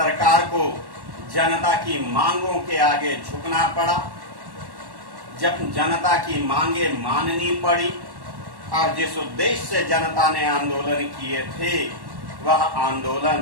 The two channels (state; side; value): late; left; 1.1 ms